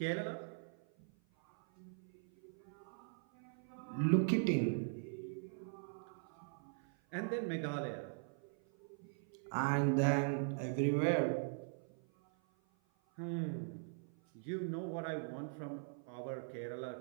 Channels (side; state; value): left; silent; 50 dB below the other